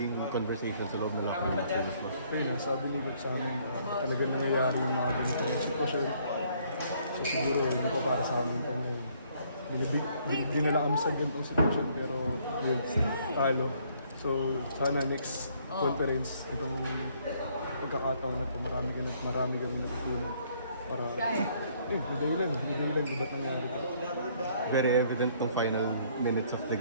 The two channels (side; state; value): both; inverted; correlation -0.65